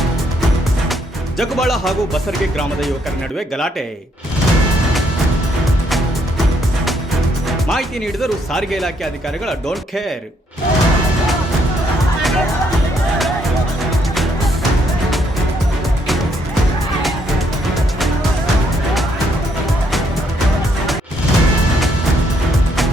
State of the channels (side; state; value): both; normal; correlation 0.72